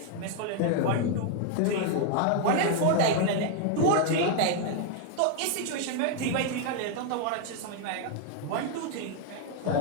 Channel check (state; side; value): different; both; correlation 0.00